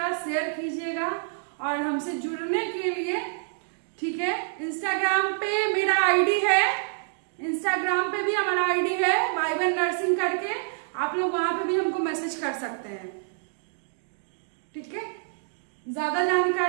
शेयर कीजिएगा और हमसे जुड़ने के लिए, ठीक है, इंस्टाग्राम पे मेरा आईडी है, इंस्टाग्राम पे भी हमारा आईडी है वाइबन नर्सिंग करके, आप लोग वहां पे भी हमको मैसेज कर सकते हैं, ठीक है। ज्यादा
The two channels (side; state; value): left; silent; digital silence